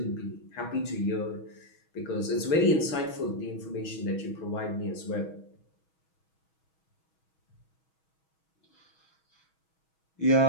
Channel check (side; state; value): right; late; 6.3 ms